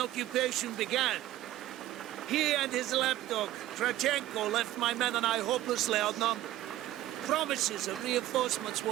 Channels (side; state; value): left; quieter; 14.5 dB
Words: began, he and his lapdog, Kravchenko, left my men and I hopelessly outnumbered. Promises of reinforcements